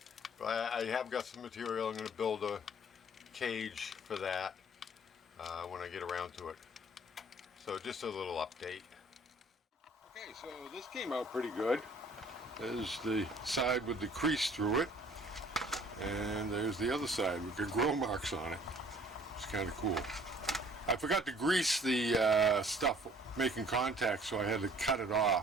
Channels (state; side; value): normal; both; correlation 0.55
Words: But I have got some material. I'm going to build a cage for that when I get around to it. So just a little update. Okay, so this came out pretty good. There's the side with the crease through it, and there's the other side with the grill marks on it. It's kind of cool. I forgot to grease the stuff making contact, so I had to cut it